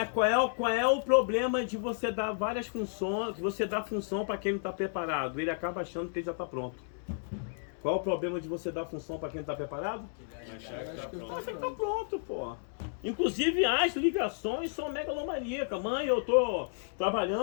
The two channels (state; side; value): silent; right; digital silence